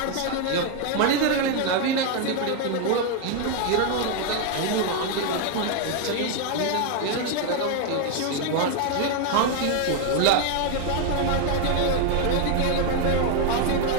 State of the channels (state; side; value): different; both; correlation 0.01